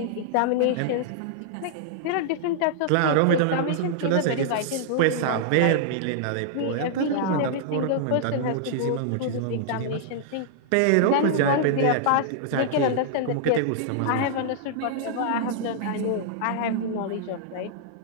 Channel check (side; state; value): both; different; correlation -0.01